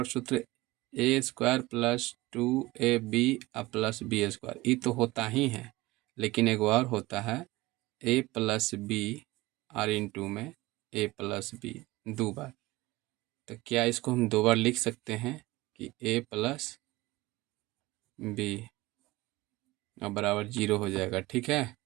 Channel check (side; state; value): left; quieter; 20.0 dB